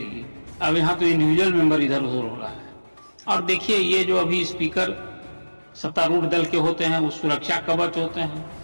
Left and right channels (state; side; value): inverted; both; correlation -1.00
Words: अब यहाँ तो इंडिविजुअल मेंबर इधर उधर हो रहा है। और देखिए, ये जो अभी स्पीकर सत्तारूढ़ दल के होते हैं वो सुरक्षा कवच होते हैं।